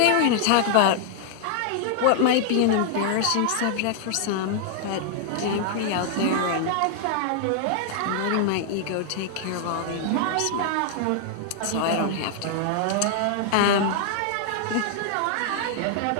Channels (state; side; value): different; both; correlation 0.00